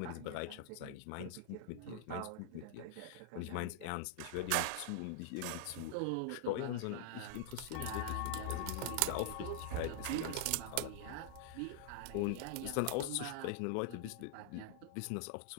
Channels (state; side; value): different; both; correlation -0.01